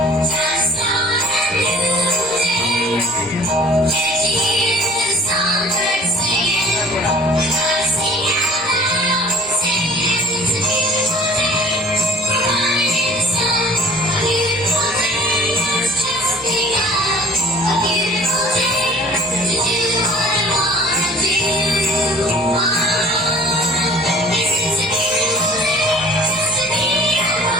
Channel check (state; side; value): normal; both; correlation 0.49